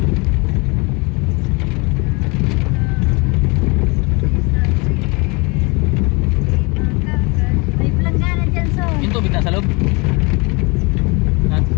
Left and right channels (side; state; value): right; quieter; 28.4 dB